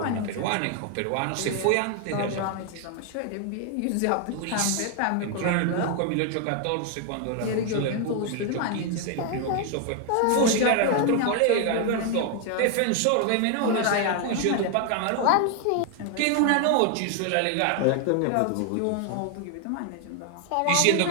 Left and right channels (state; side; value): different; both; correlation 0.00